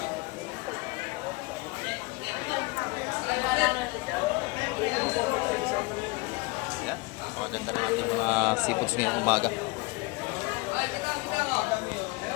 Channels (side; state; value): right; quieter; 25.0 dB